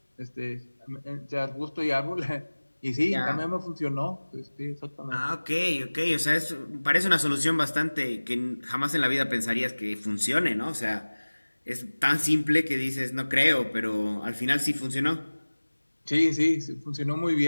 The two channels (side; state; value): both; inverted; correlation -1.00